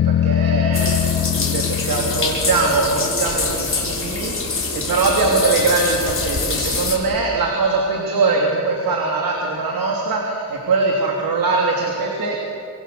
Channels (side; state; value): both; normal; correlation -0.11